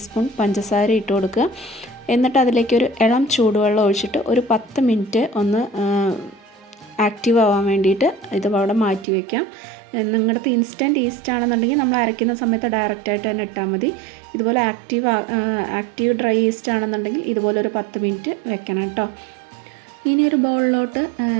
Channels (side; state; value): left; drops out; at 9.1 s